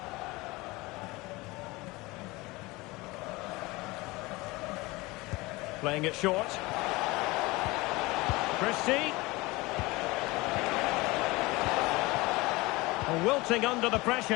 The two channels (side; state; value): right; quieter; 22.3 dB